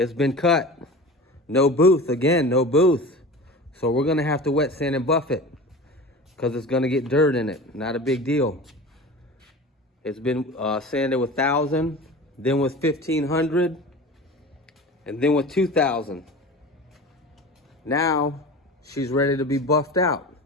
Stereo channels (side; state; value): both; normal; correlation 0.34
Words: been cut. No booth, again, no booth. So we're gonna have to wet sand and buff it because it's gonna get dirt in it. Not a big deal. It's been sanded with 1,000, then with 1,500, and then with 2,000. Now she's ready to be buffed out.